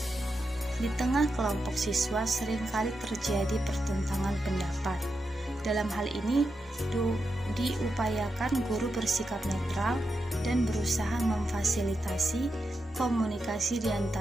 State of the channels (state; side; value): normal; both; correlation 0.87